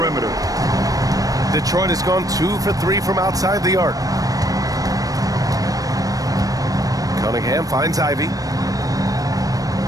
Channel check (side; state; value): left; late; 0.18 ms